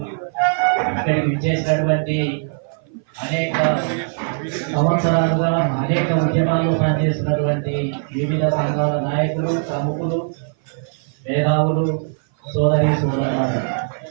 ఇక్కడికి విచ్చేసినటువంటి అనేక సంవత్సరాలుగా అనేక ఉద్యమాల్లో పనిచేస్తున్నటువంటి వివిధ సంఘాల నాయకులు, ప్రముఖులు, మేధావులు, సోదరి సోదరులు,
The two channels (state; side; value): silent; left; 58 dB below the other